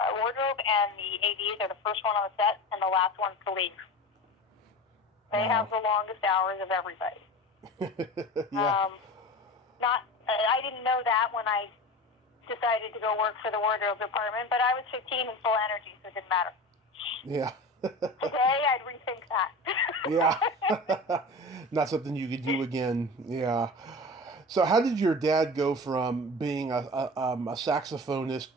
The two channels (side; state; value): both; normal; correlation 0.32